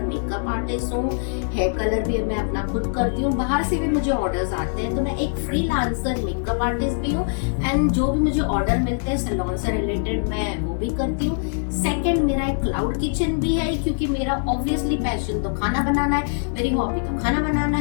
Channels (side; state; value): right; silent; digital silence